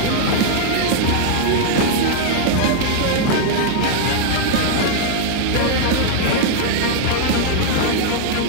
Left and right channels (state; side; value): different; both; correlation -0.01